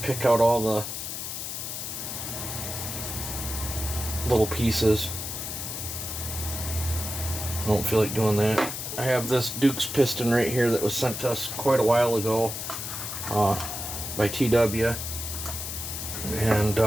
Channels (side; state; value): left; noise; hiss, 6 dB below the sound